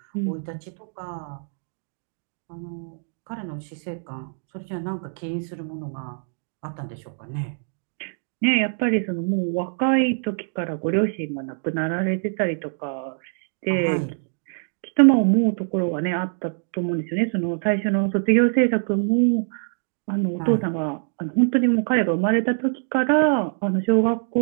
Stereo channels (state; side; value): silent; left; digital silence